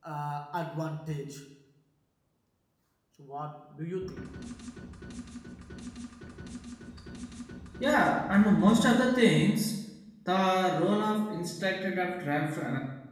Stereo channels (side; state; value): both; identical; correlation 1.00